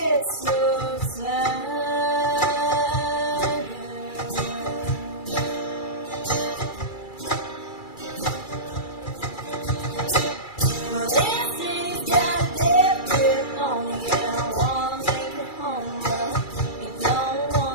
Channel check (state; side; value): late; right; 2.3 ms